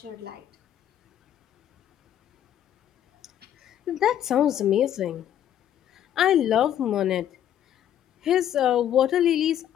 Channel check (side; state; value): right; quieter; 10.7 dB